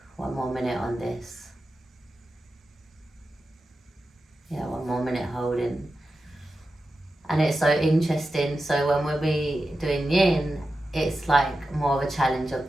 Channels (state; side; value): normal; both; correlation 0.91